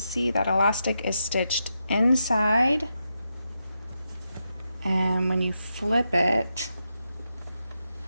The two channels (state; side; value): inverted; both; correlation -0.86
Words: that elastic is stitched inside, and when you flip it,